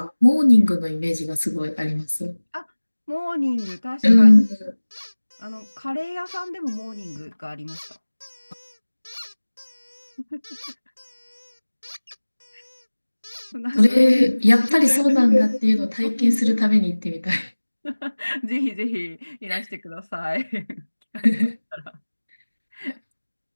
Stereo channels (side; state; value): both; inverted; correlation -1.00